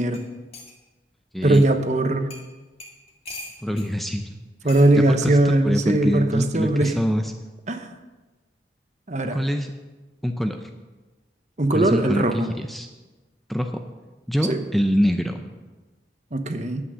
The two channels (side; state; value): both; normal; correlation 0.81